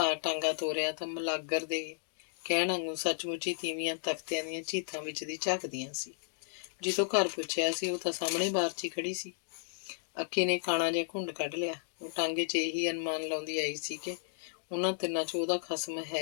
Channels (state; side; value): silent; right; digital silence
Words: ਟਾਂਗਾ ਤੋਰਿਆ ਤਾਂ ਮਲਾਗਰ ਦੇ ਕਹਿਣ ਵਾਂਗੂ ਸੱਚਮੁੱਚ ਹੀ ਤੀਵੀਆਂ ਤਖਤਿਆਂ ਦੀਆਂ ਝੀਤਾਂ ਵਿੱਚ ਦੀ ਝਾਕਦੀਆਂ ਸੀ। ਜਿੱਥੋਂ ਘਰ ਪੁੱਛਿਆ ਸੀ ਉਹ ਤਾਂ ਸਾਹਮਣੇ ਬਾਰ 'ਚ ਹੀ ਖੜੀ ਸੀ। ਅੱਕੀ ਨੇ ਕਾਣਾ ਜਿਹਾ ਘੁੰਡ ਕੱਢ ਲਿਆ। ਉਹ ਟਾਂਗੇ 'ਚ ਇਹੀ ਅਨੁਮਾਨ ਲਾਉਂਦੀ ਆਈ ਸੀ ਕਿ ਉਹਨਾਂ ਤਿੰਨਾਂ 'ਚ ਉਹਦਾ ਖਸਮ